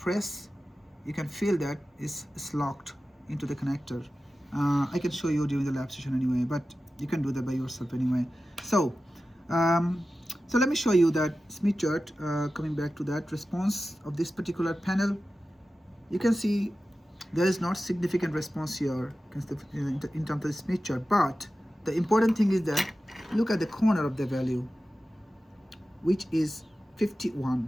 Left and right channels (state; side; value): normal; both; correlation 0.94